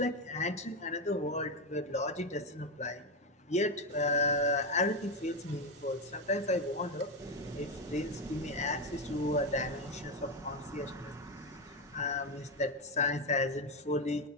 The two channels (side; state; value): both; normal; correlation 0.10